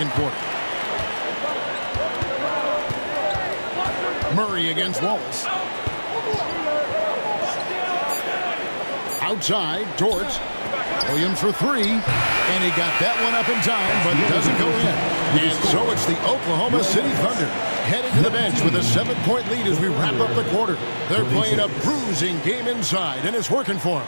quarter. Murray against Wallace. Outside, Dort. Williams for three, and he got that one up in time, but doesn't go in. And so it's the Oklahoma City Thunder heading to the bench with a 7-point lead as we wrap up the quarter. They're playing a bruising game inside, and it's working for them.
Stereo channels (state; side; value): inverted; both; correlation -1.00